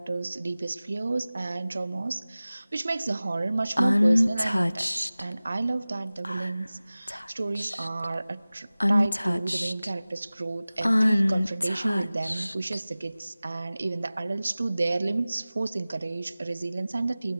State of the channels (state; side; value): inverted; both; correlation -0.98